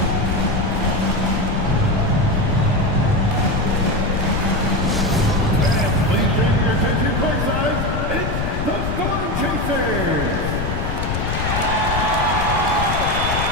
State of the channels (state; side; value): noise; left; rumble, 2 dB below the sound